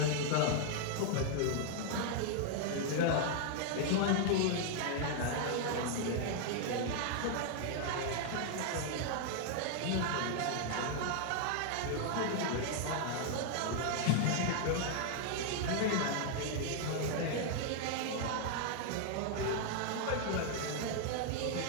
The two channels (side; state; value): both; different; correlation 0.00